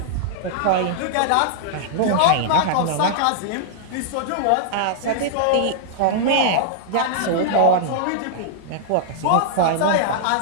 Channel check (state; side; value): different; both; correlation -0.01